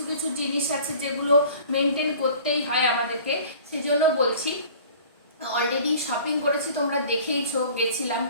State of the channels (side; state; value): both; inverted; correlation -0.47